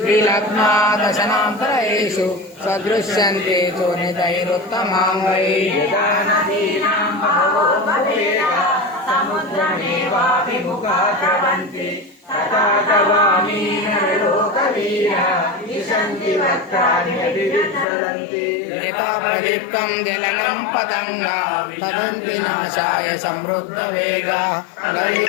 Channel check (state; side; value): drops out; right; at 17.9 s